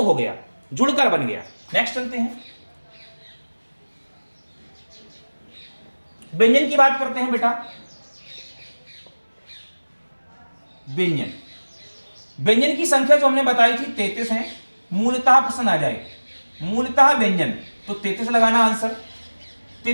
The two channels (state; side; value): inverted; both; correlation -1.00